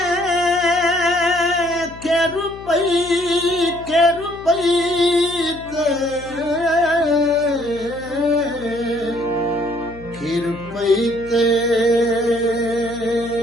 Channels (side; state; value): left; noise; hum, 18 dB below the sound